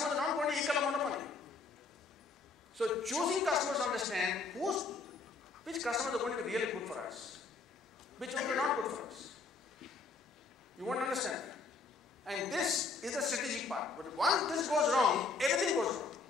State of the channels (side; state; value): right; quieter; 4.1 dB